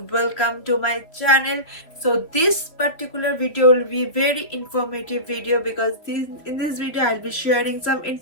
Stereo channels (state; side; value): late; right; 3.3 ms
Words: welcome to my channel. So this particular video will be very informative video because in this video I'll be sharing some